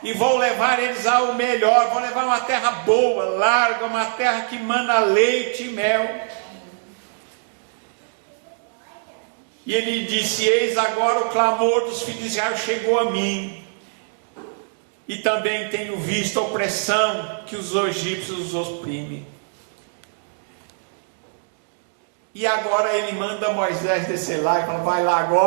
e vou levar eles ao melhor. Vou levar uma terra boa, larga, uma terra que mana leite e mel. E ele disse: eis agora o clamor dos filhos de Israel chegou a mim, e também tenho visto a opressão que os egípcios os oprimem. E agora ele manda Moisés descer lá e fala: vai lá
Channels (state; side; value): silent; left; digital silence